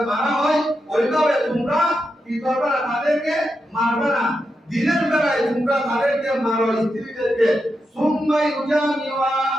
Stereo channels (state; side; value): normal; both; correlation 0.87